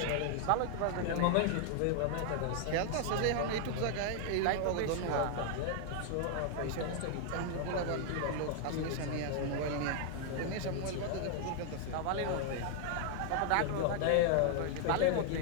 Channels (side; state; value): both; different; correlation 0.00